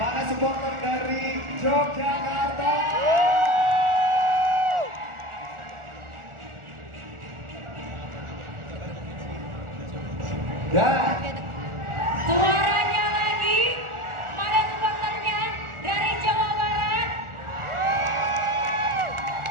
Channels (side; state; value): left; late; 1.4 ms